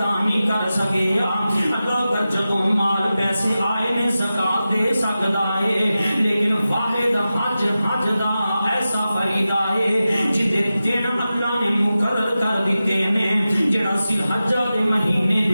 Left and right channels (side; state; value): both; inverted; correlation -0.93